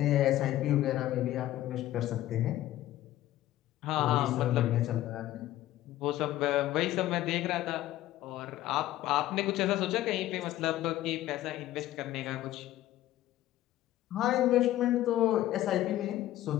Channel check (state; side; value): quieter; right; 14.3 dB